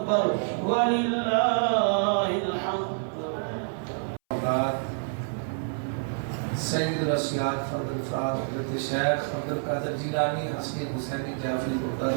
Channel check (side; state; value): left; silent; 60 dB below the other